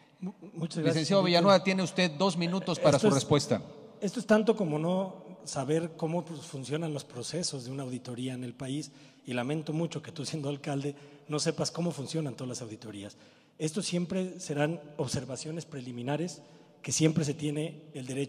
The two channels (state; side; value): identical; both; correlation 1.00